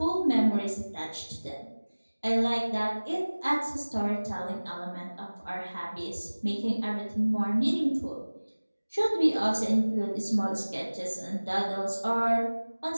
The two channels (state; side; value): inverted; both; correlation -1.00